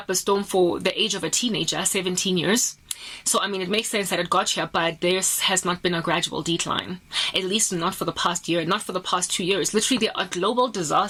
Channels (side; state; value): both; identical; correlation 1.00